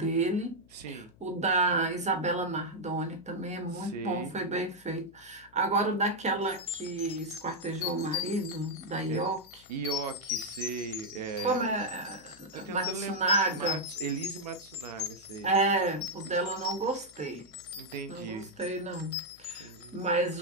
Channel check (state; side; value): noise; left; hum, 27 dB below the sound